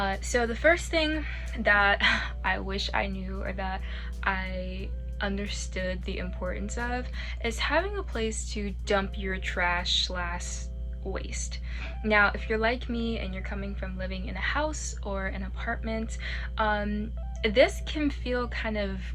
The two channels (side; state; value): both; identical; correlation 1.00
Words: So the first thing that I wish I knew, or that I understood the importance of, is having a place to dump your trash slash waste. Now, if you're like me and you're coming from living in a house or an apartment, this can feel kind of